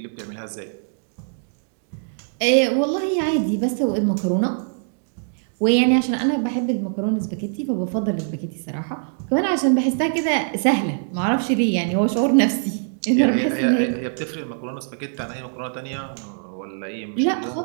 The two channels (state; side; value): silent; left; digital silence